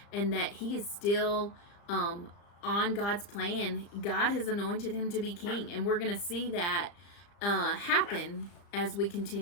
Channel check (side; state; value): right; late; 35 ms